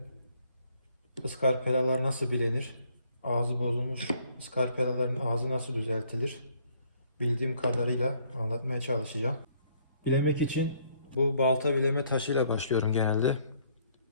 ıskarpelalar nasıl bilenir, ağzı bozulmuş ıskarpelaların ağzı nasıl düzeltilir, bildiğim kadarıyla anlatmaya çalışacağım. Bilemek için bu balta bileme taşıyla başlıyorum genelde.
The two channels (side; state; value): both; inverted; correlation -0.66